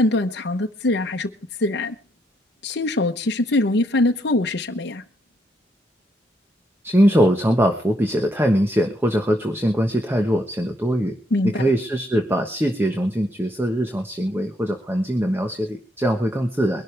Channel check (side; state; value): both; normal; correlation 0.75